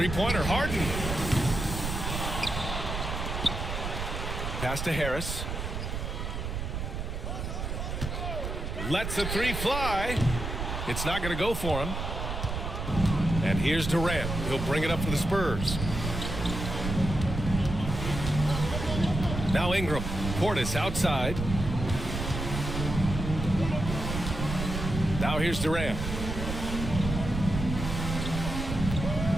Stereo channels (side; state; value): right; noise; rumble, 4 dB below the sound